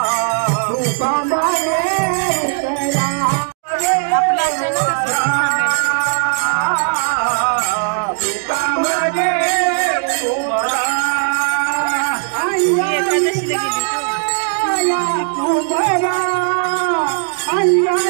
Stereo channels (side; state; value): left; silent; 68 dB below the other